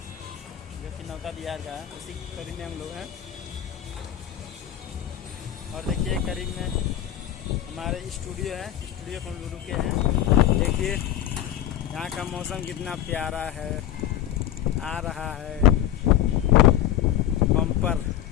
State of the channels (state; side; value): quieter; right; 11.5 dB